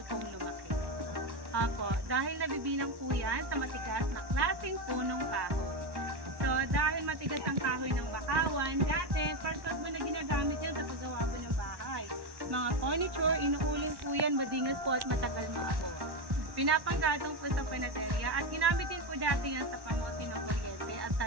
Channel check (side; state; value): left; late; 1.1 ms